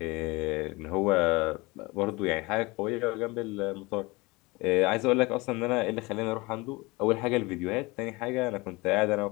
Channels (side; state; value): right; quieter; 23.8 dB